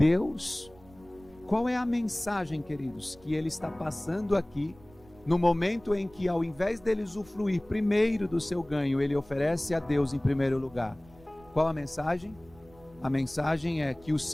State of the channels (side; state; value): right; noise; rumble, 25 dB below the sound